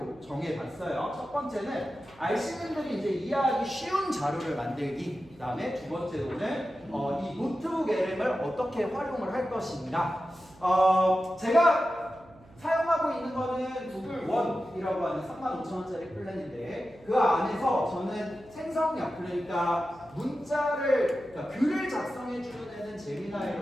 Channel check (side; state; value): right; noise; hum, 25 dB below the sound